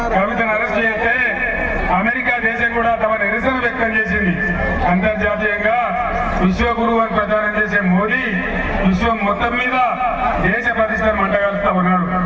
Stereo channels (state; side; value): identical; both; correlation 1.00